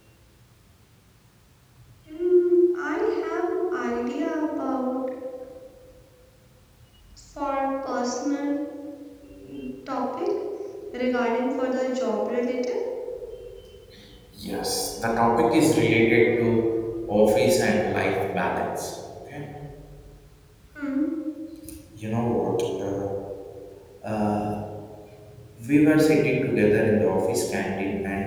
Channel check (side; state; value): both; identical; correlation 1.00